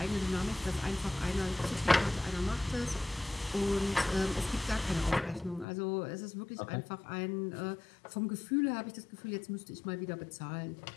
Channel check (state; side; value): drops out; right; at 5.7 s